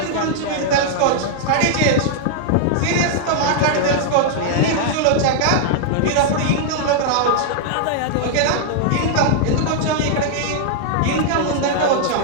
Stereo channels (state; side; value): different; both; correlation -0.01